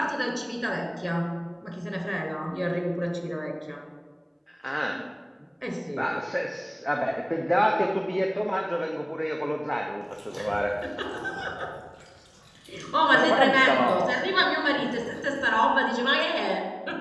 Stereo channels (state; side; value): identical; both; correlation 1.00